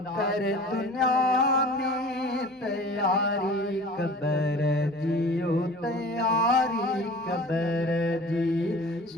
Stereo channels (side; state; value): both; normal; correlation 0.42